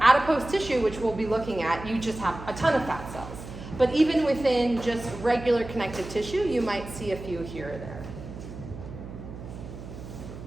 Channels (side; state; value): right; noise; hum, 12 dB below the sound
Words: adipose tissue, which we'll be looking at, you just have a ton of fat cells. But even within just regular connective tissue, you might see a few here or there.